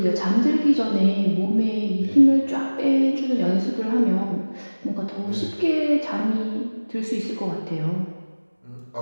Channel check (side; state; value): both; inverted; correlation -1.00